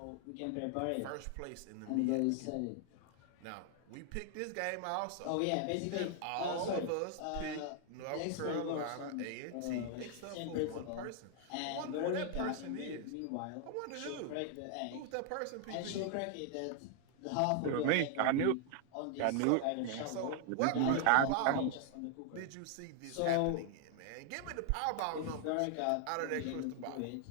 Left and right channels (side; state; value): both; different; correlation 0.00